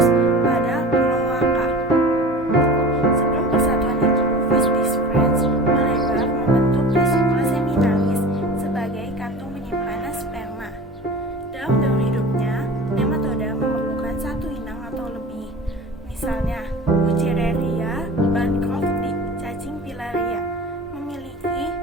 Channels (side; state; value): both; normal; correlation 0.36